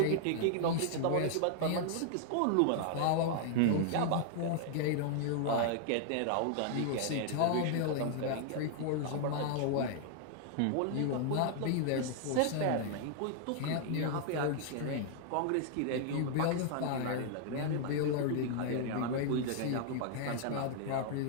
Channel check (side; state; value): both; different; correlation 0.00